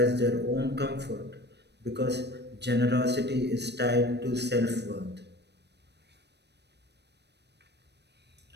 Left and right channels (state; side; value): late; left; 0.49 ms